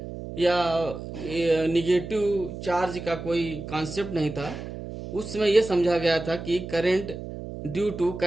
या निगेटिव चार्ज का कोई कॉन्सेप्ट नहीं था। उस समय यह समझा गया था कि current due to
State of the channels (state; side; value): noise; right; hum, 9 dB below the sound